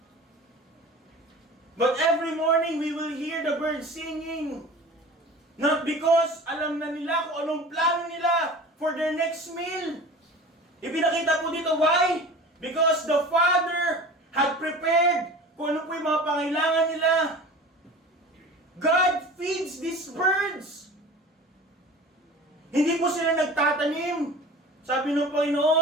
But every morning we will hear the birds singing. Not because alam na nila kung anong plano nila for their next meal. Ipinakita po dito, why? Because the Father had prepared kung ano po yung mga pangailangan nila. God feeds these birds. Hindi po sila nagtatanim. Sabi ng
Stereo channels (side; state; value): both; normal; correlation 0.38